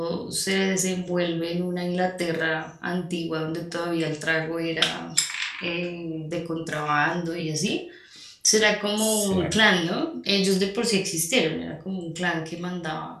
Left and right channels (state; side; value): identical; both; correlation 1.00